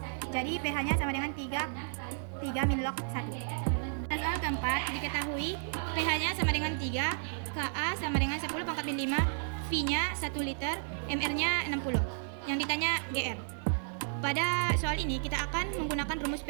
Jadi pH-nya sama dengan 3 min log 1. Soal keempat, diketahui pH-nya sama dengan 3, Ka sama dengan 10 pangkat min 5, V V-nya 1 liter, MR-nya 60. Yang ditanya GR. Pada soal ini kita akan menggunakan rumus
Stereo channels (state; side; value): silent; left; 56 dB below the other